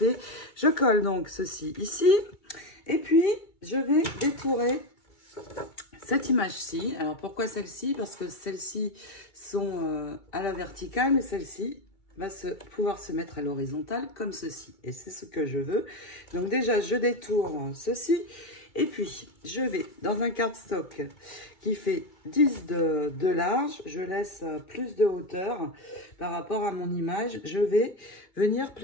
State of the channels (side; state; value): right; late; 2.3 ms